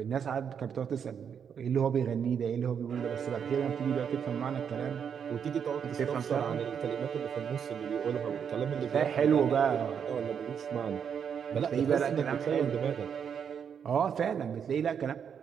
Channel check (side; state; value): left; quieter; 7.5 dB